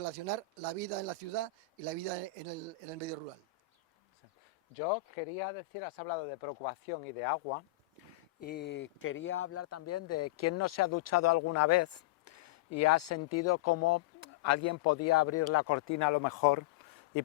la vida en la ciudad y la vida en el medio rural. Yo quería decir, has hablado de preocupación y de agua, y quería hablar también de quién no se ha duchado alguna vez y ha sentido cómo alguien podía abrir la cortina a lo mejor y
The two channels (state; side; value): quieter; right; 12.0 dB